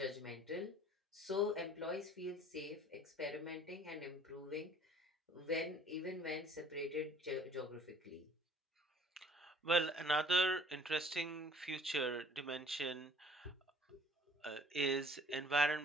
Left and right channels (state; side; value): normal; both; correlation 0.54